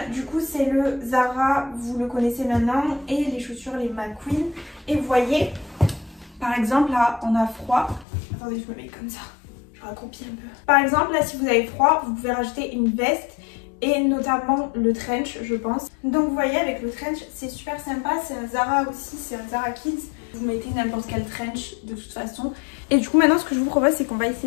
du coup, c'est le Zara. Vous le connaissez maintenant. Et les chaussures, les McQueen. Et vous voyez, par exemple, là, on a froid. Attendez, je me mets comme ça. Je raccroupis un peu. Par exemple, là, si vous avez froid, vous pouvez rajouter une veste et notamment le trench, je pense. Donc, vous voyez, avec le trench, c'est super sympa. C'est un Zara aussi, c'est un Zara Kids. Vous mettez n'importe quel trench de toute façon. Et du coup, maintenant, ce que je vous propose, c'est qu'on va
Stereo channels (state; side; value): drops out; right; at 8.1 s